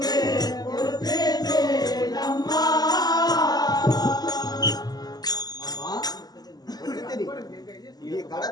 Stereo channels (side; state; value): right; late; 0.19 ms